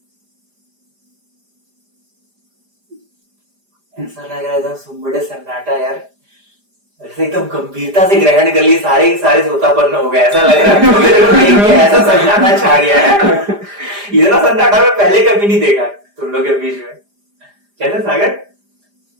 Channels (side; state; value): left; late; 5.0 ms